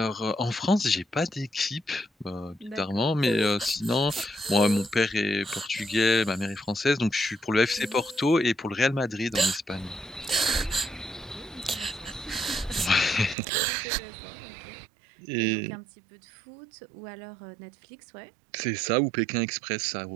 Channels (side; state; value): left; drops out; at 13.4 s